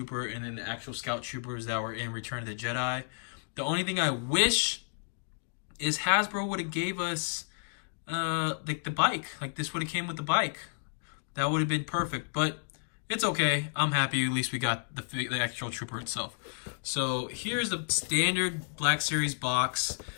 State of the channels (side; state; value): right; silent; digital silence